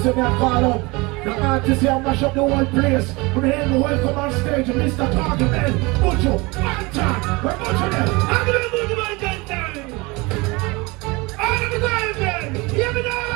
that I call up. The artist here mash up the whole place. We're here to welcome on stage Mr. Carnival, Bucho, Anton. We're Bucho there. I'm gonna move to my gentleman. I'm gonna go then. Hear me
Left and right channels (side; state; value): left; quieter; 24.8 dB